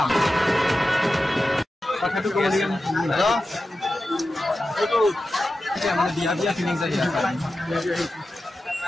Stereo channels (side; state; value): both; normal; correlation 0.92